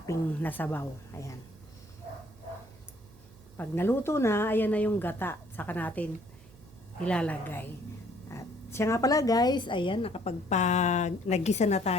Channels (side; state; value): right; noise; hum, 24 dB below the sound